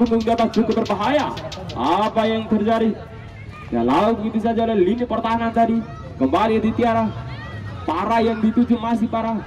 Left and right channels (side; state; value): both; identical; correlation 1.00